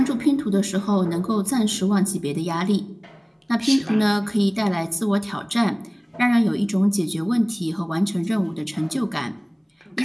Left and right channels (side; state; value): both; identical; correlation 1.00